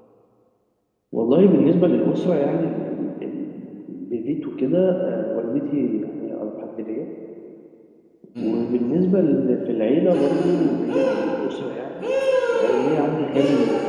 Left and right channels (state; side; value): identical; both; correlation 1.00